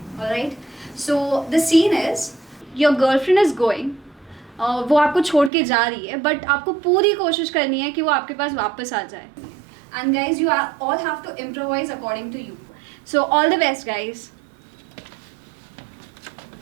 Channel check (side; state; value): left; drops out; at 5.5 s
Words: Alright? So the scene is your girlfriend is going. वो आपको छोड़ के जा रही है, but आपको पूरी कोशिश करनी है कि वो आपके पास वापस आ जाए. And guys, you are all have to improvise according to you. So all the best, guys.